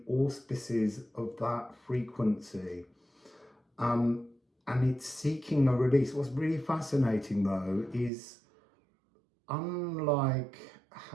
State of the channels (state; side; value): drops out; left; at 8.1 s